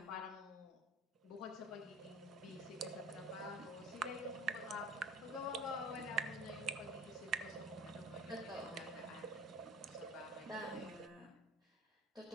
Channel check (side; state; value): both; normal; correlation 0.41